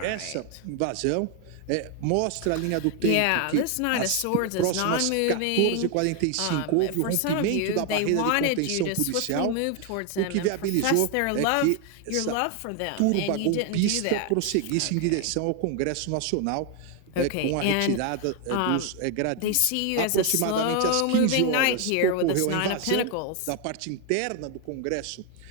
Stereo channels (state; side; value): different; both; correlation 0.01